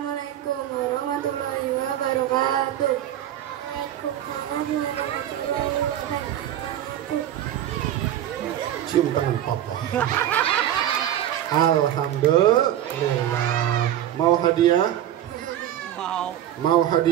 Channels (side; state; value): left; quieter; 11.7 dB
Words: warahmatullahi wabarakatuh. Waalaikumsalam warahmatullahi wabarakatuh. Cium tangan papa. Alhamdulillah. Mau hadiah? Mau